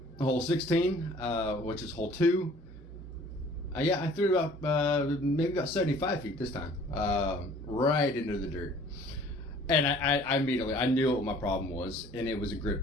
Hole 16, which is hole 2. Yeah, I threw it about maybe about 75 feet this time, right into the dirt. And I immediately, I knew what my problem was, and it was a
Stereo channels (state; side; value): normal; both; correlation 0.52